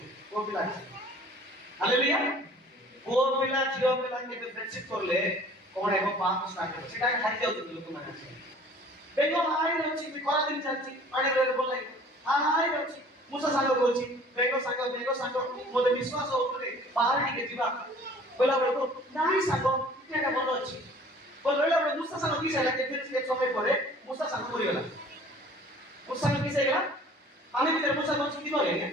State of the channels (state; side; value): normal; both; correlation 0.50